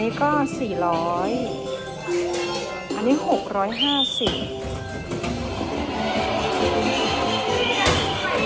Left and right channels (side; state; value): both; identical; correlation 1.00